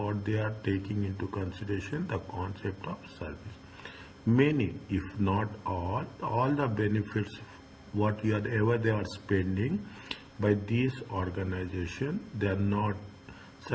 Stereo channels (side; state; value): both; identical; correlation 1.00